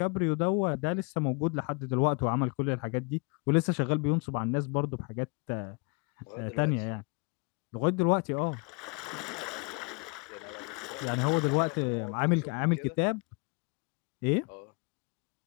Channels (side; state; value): right; quieter; 31.4 dB